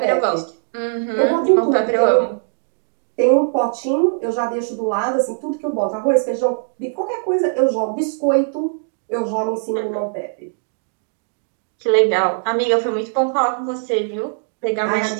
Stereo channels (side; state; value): left; silent; digital silence